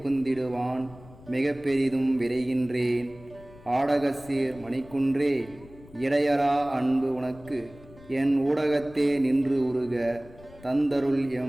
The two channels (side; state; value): left; noise; rumble, 21 dB below the sound